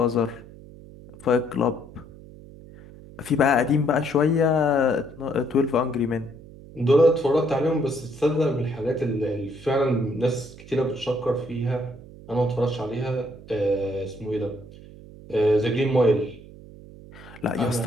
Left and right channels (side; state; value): right; noise; hum, 18 dB below the sound